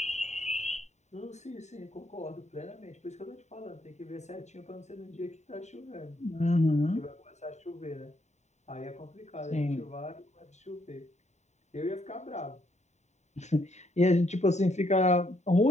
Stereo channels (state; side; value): late; right; 0.33 ms